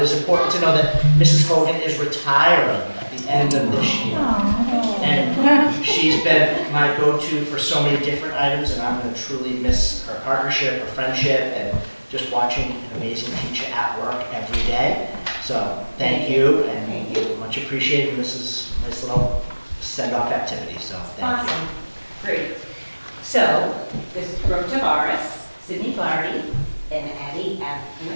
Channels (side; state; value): both; inverted; correlation -1.00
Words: it is important to know that Mrs. Hogan is retiring at the end of this year. And she's been my go-to for so many different items, and I'm gonna truly miss her partnership, her friendship, and just watching an amazing teacher at work every day. So, thank you, and much appreciated. This is a nice little send-off activity, so thank you. Awesome, great. So, this is Brooke Tavares, Sydney Flaherty, and Addie